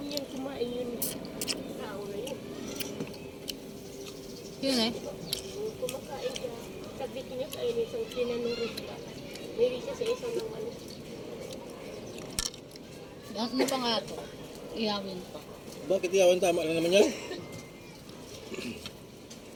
yan kumain yun. Tao na yun. Yun eh. Kumakain siya. Saglit niya kain isang tinanurit pa. Mayroon siya sa isang naman. Ano pa nga to? Iyawin pa. Bakit iyawan? Tama lang naman yan.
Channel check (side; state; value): both; identical; correlation 1.00